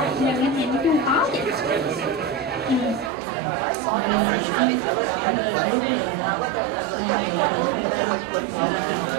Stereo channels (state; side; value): drops out; left; at 3.1 s